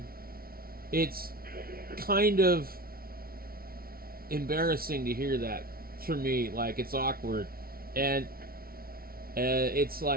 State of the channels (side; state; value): left; late; 0.43 ms